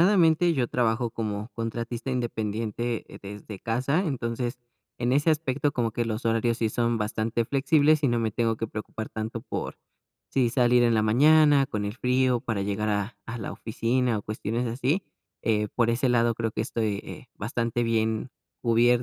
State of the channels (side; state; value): both; identical; correlation 1.00